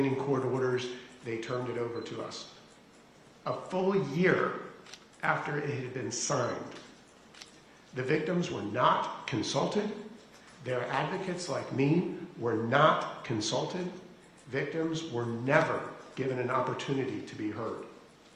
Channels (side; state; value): both; identical; correlation 1.00